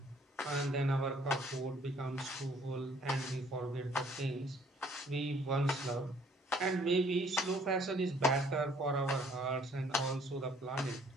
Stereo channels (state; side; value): normal; both; correlation 0.60